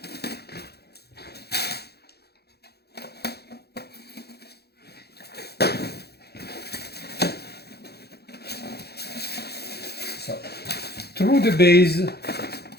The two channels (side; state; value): right; late; 0.47 ms